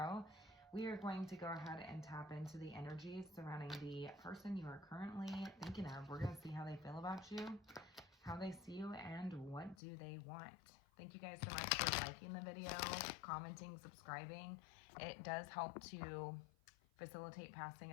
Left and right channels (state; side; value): drops out; right; at 9.8 s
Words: We are going to go ahead and tap into the energies surrounding the person you are currently thinking of. We're going to see how they feel about you, how they see you, and what do they want. Thank you guys so much for liking the video, commenting, subscribing. It does help to facilitate passing